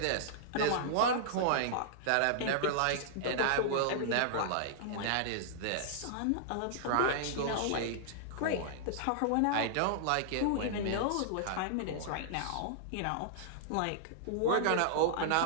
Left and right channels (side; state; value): both; different; correlation -0.01